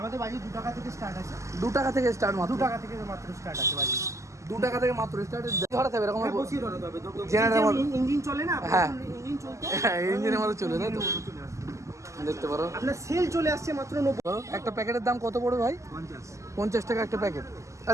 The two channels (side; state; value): left; late; 0.15 ms